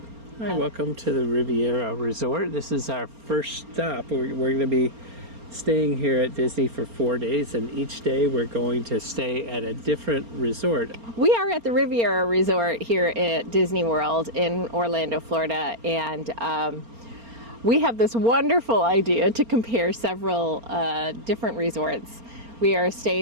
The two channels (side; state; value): left; late; 4.3 ms